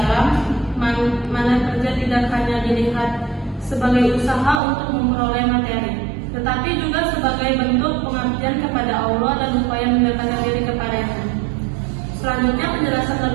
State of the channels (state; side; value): drops out; left; at 4.6 s